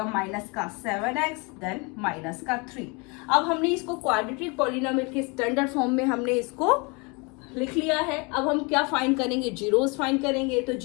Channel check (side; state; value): right; quieter; 29.9 dB